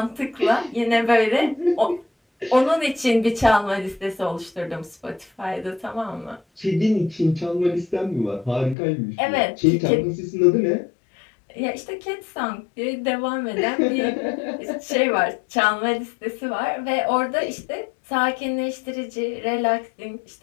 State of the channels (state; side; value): drops out; right; at 8.8 s